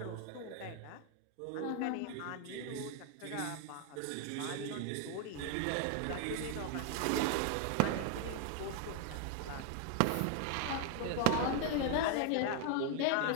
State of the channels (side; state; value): both; different; correlation 0.00